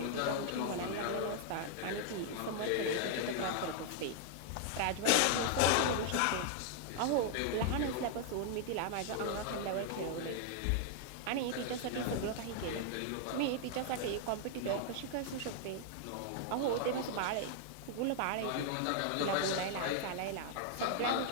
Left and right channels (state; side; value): different; both; correlation 0.00